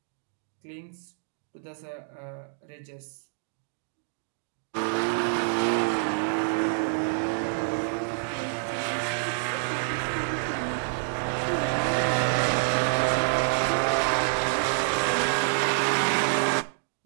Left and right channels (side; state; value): left; silent; digital silence